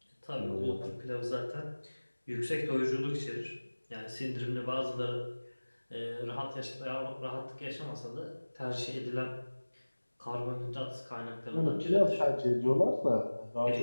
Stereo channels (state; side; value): inverted; both; correlation -1.00